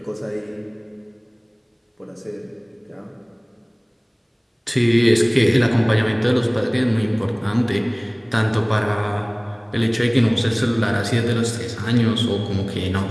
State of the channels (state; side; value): identical; both; correlation 1.00